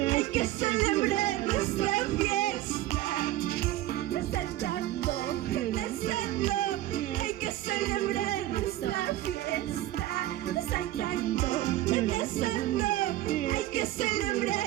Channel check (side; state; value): left; quieter; 15.0 dB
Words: hay que celebrar esta fiesta. Saltando, danzando, hay que celebrar esta fiesta. Saltando, danzando, hay que